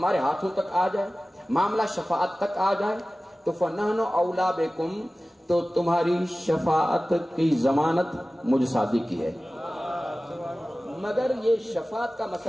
ہاتھوں تک آ جائے، معاملہ شفاعت تک آ جائے تو فَنَحْنُ أَوْلَىٰ بِكُمْ، تو تمہاری شفاعت کی ضمانت مجھ صادق کی ہے۔ مگر یہ شفاعت کا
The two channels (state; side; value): normal; both; correlation 0.97